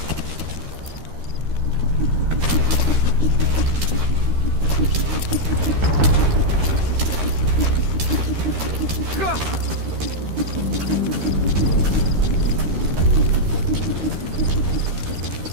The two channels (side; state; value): left; late; 13 ms